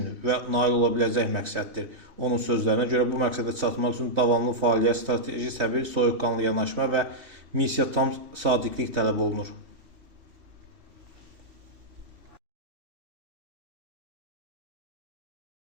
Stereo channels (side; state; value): left; late; 3.0 ms